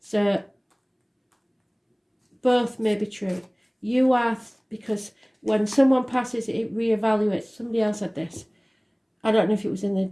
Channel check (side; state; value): both; identical; correlation 1.00